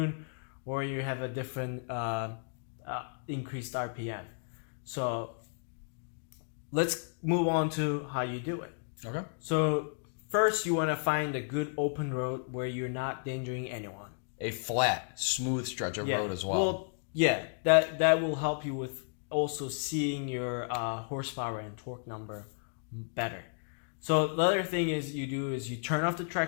or you have a different increased RPM. So let's move on to how you do it. Okay. So first, you want to find a good open road where you're not endangering anyone. A flat, smooth stretch of road as well. Well, yeah, that will help you with also seeing your horsepower and torque number better. So the other thing you turn off the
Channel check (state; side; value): silent; right; digital silence